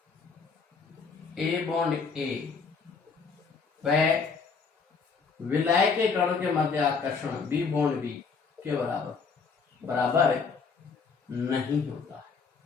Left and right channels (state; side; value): quieter; right; 5.2 dB